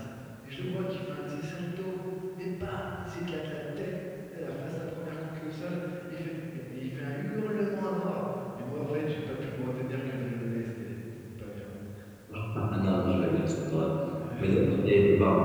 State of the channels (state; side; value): identical; both; correlation 1.00